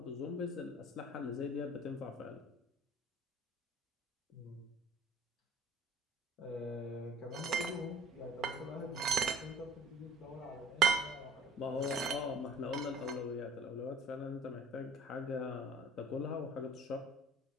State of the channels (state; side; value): normal; both; correlation 0.49